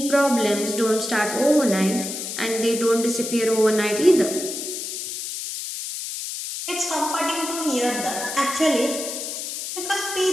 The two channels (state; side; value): noise; left; hiss, 6 dB below the sound